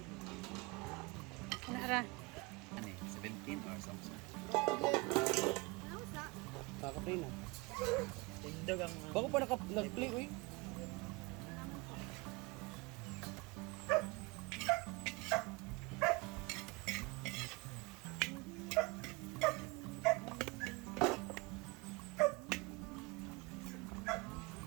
Ano ra? Ano eh, 17 or something. Kakaplay na. Tindog ang... Bako pa nag-play, uy.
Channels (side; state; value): left; quieter; 25.9 dB